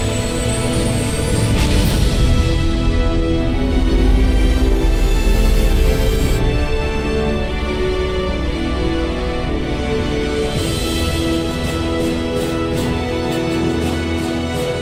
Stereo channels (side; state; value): both; identical; correlation 1.00